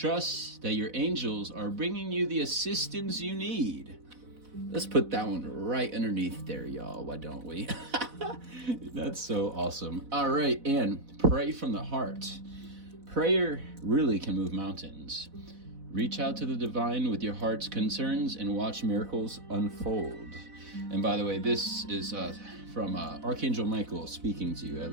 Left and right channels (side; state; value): left; late; 4.0 ms